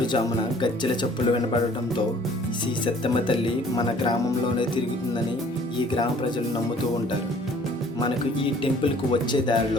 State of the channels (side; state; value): both; normal; correlation 0.55